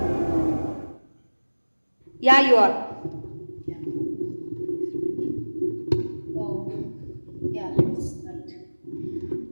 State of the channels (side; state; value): both; inverted; correlation -1.00